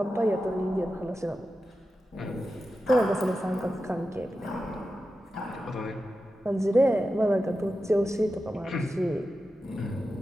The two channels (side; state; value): both; normal; correlation 0.91